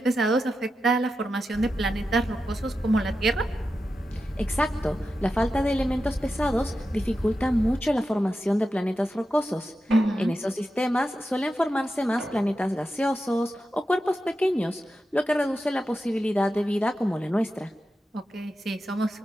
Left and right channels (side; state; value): both; normal; correlation 0.90